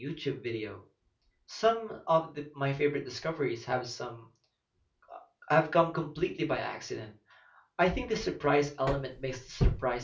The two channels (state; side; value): identical; both; correlation 1.00